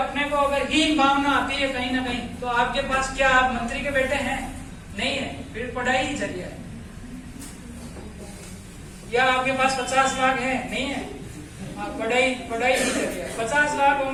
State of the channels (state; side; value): identical; both; correlation 1.00